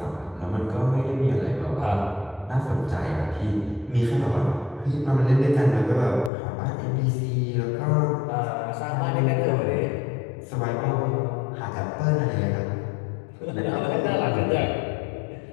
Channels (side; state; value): right; drops out; at 6.3 s